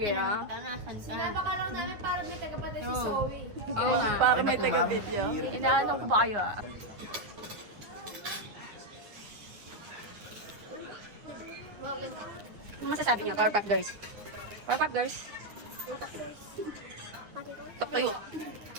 na. Sinaba ka lang namin para may tagapatid si Zoe. Oo nga. Para may taga-video. Inaanong ko ba kayo, ah? Ano masasabi niyo, Powerpuff Girls? Powerpuff Girls? Tok tayo.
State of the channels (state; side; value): late; left; 9.7 ms